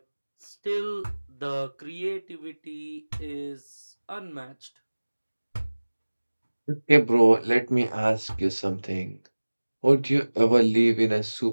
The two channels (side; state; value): both; inverted; correlation -1.00